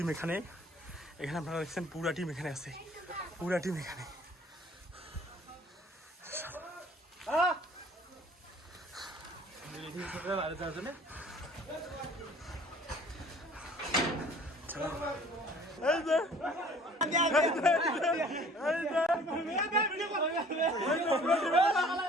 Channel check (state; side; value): normal; both; correlation 0.52